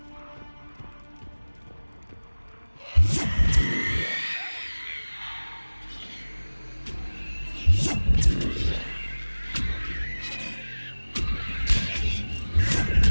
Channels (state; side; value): inverted; both; correlation -1.00